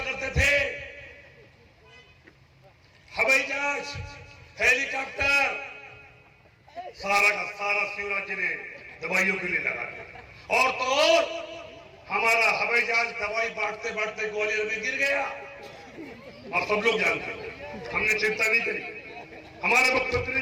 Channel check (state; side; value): identical; both; correlation 1.00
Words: करते थे, हवाई जहाज, हेलीकॉप्टर, सारा का सारा शिवराज जी ने दवाइयों के लिए लगा दिया। और तो और हमारा हवाई जहाज दवाई बांटते बांटते ग्वालियर में गिर गया। आप सब लोग जानते हैं, हमने चिंता नहीं करी, हमारे मुख्यमंत्री ने